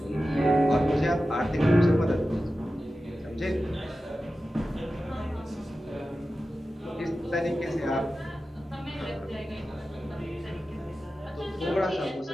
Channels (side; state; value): both; normal; correlation 0.93